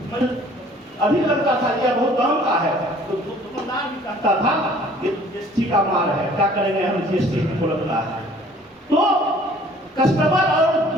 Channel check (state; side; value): normal; both; correlation 0.54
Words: अधिक लगता था, यह बहुत दाम का है, तो दुकानदार भी कहता था ये जीएसटी का माल है, क्या करेंगे हम, जीएसटी को लगता है। तो कस्टमर और